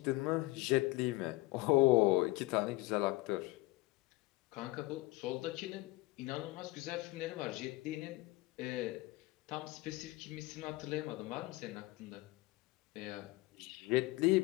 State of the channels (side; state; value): right; quieter; 20.7 dB